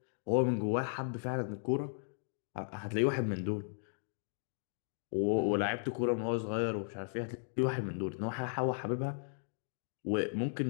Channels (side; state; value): right; silent; digital silence